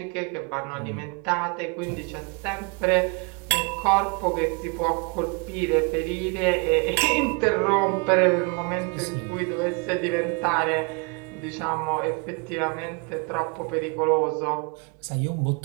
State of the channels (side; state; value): left; quieter; 32.4 dB